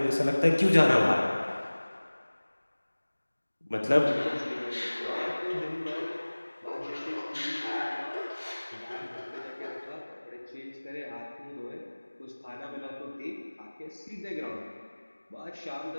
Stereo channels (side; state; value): both; inverted; correlation -1.00